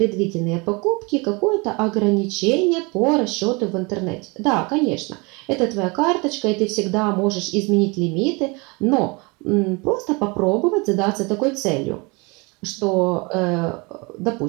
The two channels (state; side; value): quieter; left; 28.2 dB